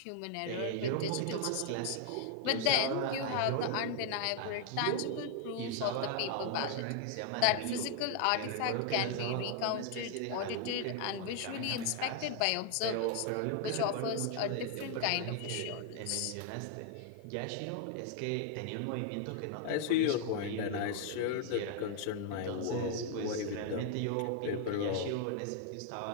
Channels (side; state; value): both; different; correlation 0.00